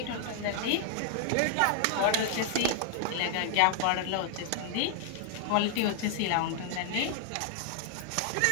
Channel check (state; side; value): different; both; correlation 0.00